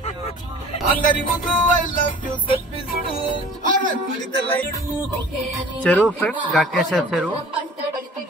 చెరువు ఫ్రెండ్స్, గట్టేశ్వర చెరువు.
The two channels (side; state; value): both; normal; correlation 0.46